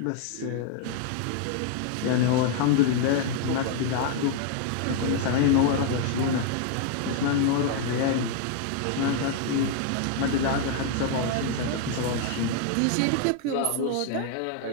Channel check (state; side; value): different; both; correlation 0.00